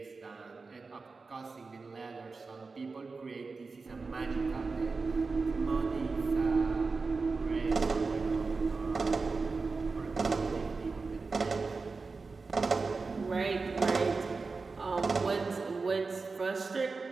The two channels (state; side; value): quieter; left; 4.2 dB